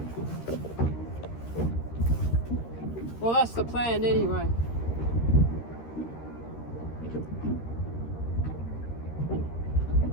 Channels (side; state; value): right; late; 13 ms